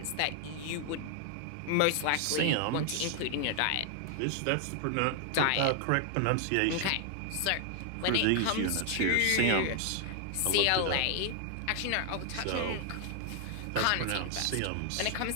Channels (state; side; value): different; both; correlation 0.00